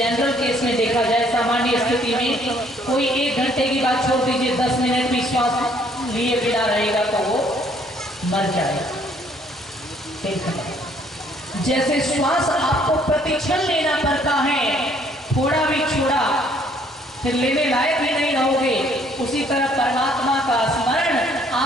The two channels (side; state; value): both; normal; correlation 0.63